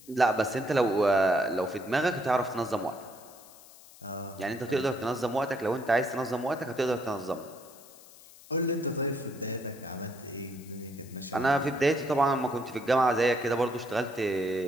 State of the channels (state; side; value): noise; left; hiss, 21 dB below the sound